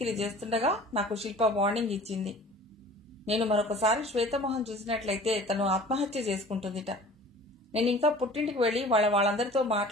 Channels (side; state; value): both; normal; correlation 0.45